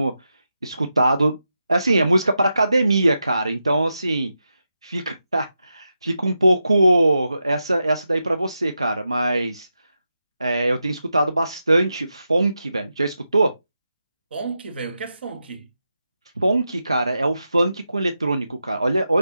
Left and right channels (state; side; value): inverted; both; correlation -0.88